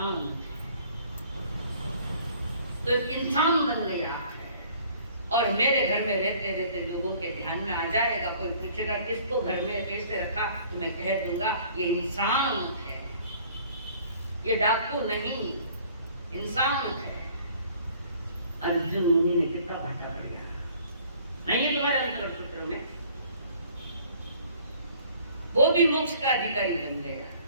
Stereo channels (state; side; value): inverted; both; correlation -0.55